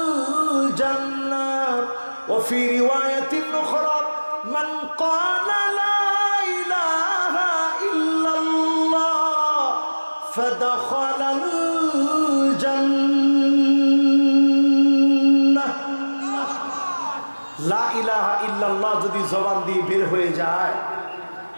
জান্নাহ, ওয়া ফি রিওয়ায়াতিন উখরা মান ক্বালা লা ইলাহা ইল্লাল্লাহ ফাদাখালাল জান্নাহ। লা ইলাহা ইল্লাল্লাহ যদি জবান দিয়ে বের হয়ে যায়,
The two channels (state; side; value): inverted; both; correlation -1.00